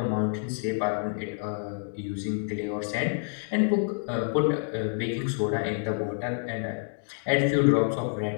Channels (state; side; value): silent; right; 59 dB below the other